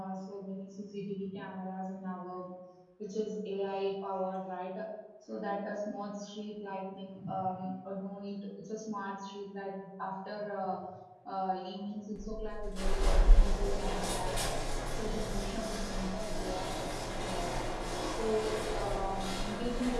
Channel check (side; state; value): both; identical; correlation 1.00